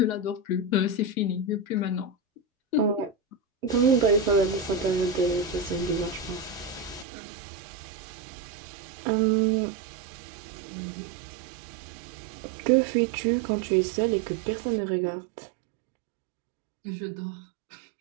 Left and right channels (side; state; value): left; drops out; at 7.1 s